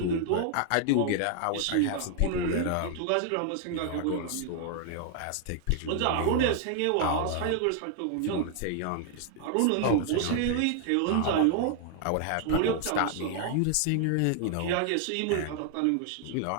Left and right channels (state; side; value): different; both; correlation 0.00